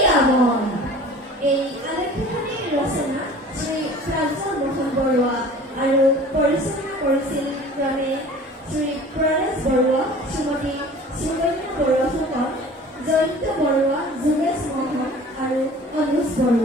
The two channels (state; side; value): normal; both; correlation 0.44